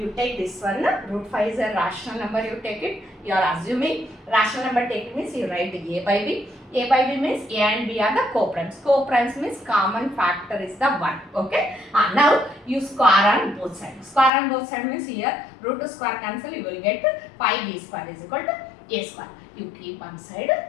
take this one, root 5 is a rational number, you take it, you are assuming rational number taken means you write A by B. A by B means A and B are the co-primes. Co-primes means common factor is the 1. Okay, now you square on both sides. Square on both sides means here root to square cancel, you will get 5b square is equal to A square. You keep one side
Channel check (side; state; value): right; drops out; at 14.3 s